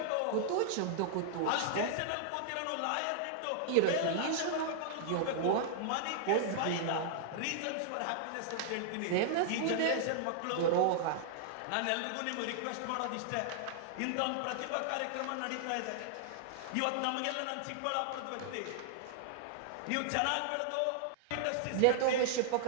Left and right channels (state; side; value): different; both; correlation -0.01